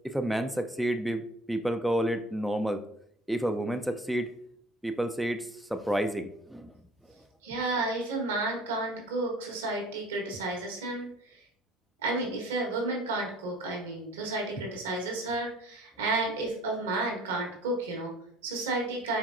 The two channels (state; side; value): normal; both; correlation 0.49